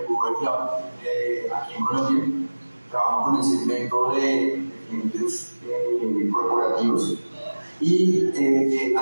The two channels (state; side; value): inverted; both; correlation -1.00